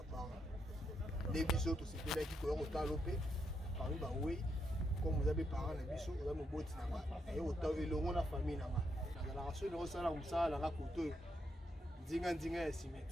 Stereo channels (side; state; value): both; normal; correlation 0.80